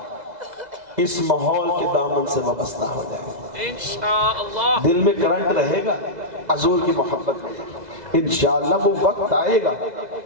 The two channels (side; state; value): left; late; 2.0 ms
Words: اس ماحول کے دامن سے وابستہ ہو جائے، انشاءاللہ دل میں کرنٹ رہے گا حضور کی محبت میں۔ انشاءاللہ وہ وقت آئے گا